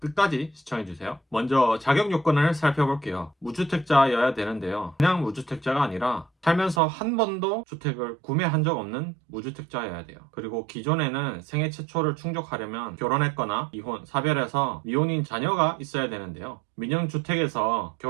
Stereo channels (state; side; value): drops out; left; at 6.8 s